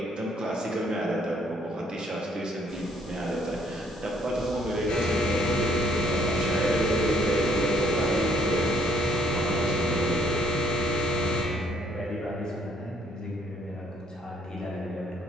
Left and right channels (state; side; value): normal; both; correlation 0.65